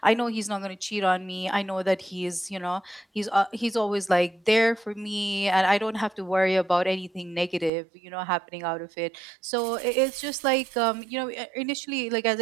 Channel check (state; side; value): drops out; left; at 7.7 s